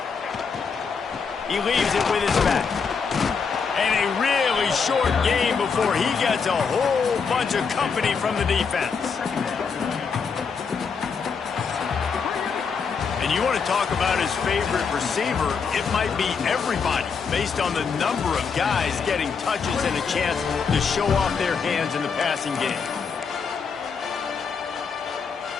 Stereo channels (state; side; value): quieter; right; 5.7 dB